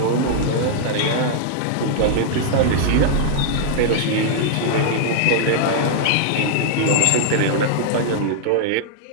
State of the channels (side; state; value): both; different; correlation -0.01